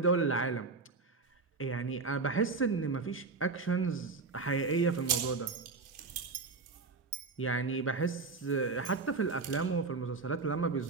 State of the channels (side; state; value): left; quieter; 4.2 dB